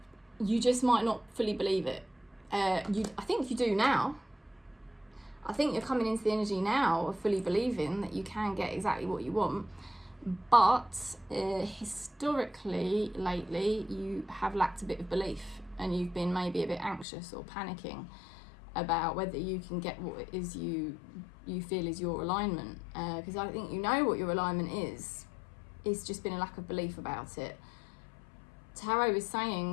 You just might not fully believe it. I think you do now. I think you're coming into the energy now of fully believing that you can get exactly what you want. But historically, lately, you have lacked a bit of belief, and you've been maybe a bit anxious or panicking about whether you can get what it is you feel is your alignment. Because I think you know what your alignment is. It's just been a lack of belief about it. Tarot is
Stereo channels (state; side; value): drops out; right; at 17.1 s